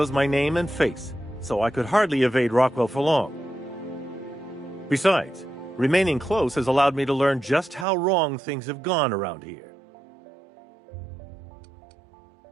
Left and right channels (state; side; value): drops out; left; at 7.9 s